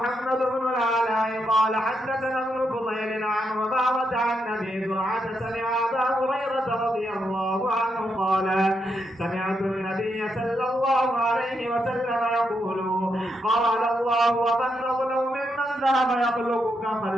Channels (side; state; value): both; normal; correlation 0.81